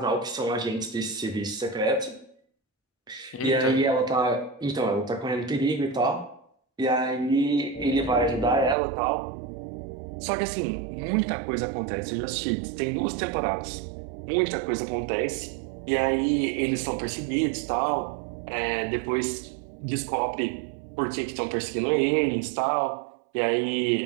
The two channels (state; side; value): drops out; left; at 8.8 s